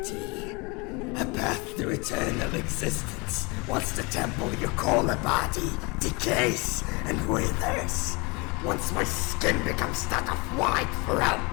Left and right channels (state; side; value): quieter; right; 28.3 dB